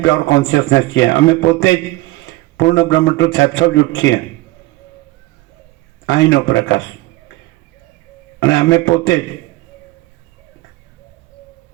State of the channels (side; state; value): left; quieter; 19.6 dB